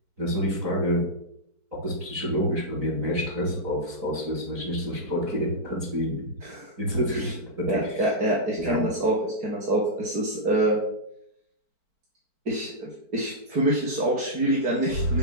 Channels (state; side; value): late; left; 4.5 ms